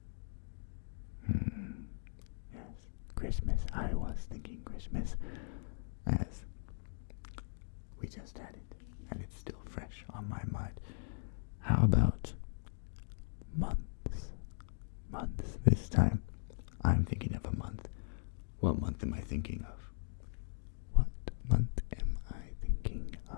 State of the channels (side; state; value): right; silent; digital silence